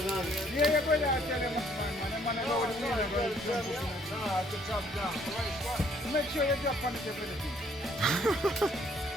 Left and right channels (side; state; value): both; normal; correlation 0.63